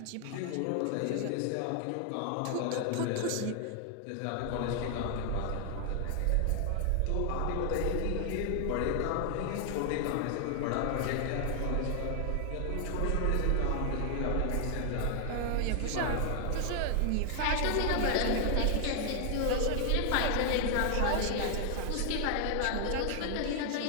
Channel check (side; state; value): both; different; correlation 0.00